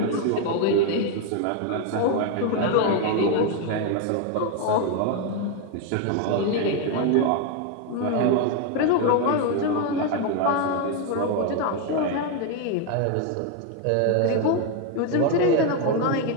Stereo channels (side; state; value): both; different; correlation 0.01